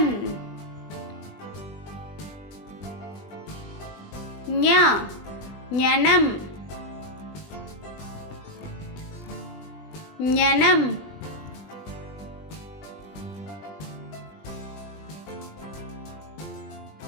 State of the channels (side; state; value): right; late; 20 ms